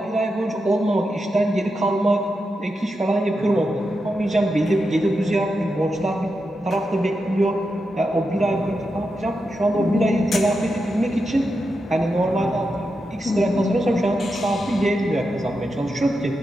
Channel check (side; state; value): both; normal; correlation 0.87